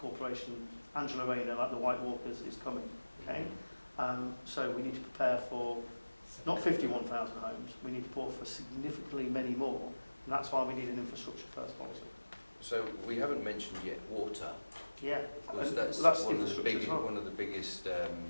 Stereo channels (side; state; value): both; inverted; correlation -1.00